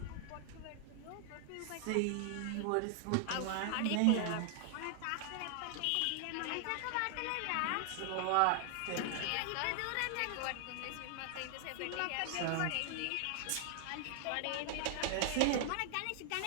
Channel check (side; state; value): both; different; correlation 0.00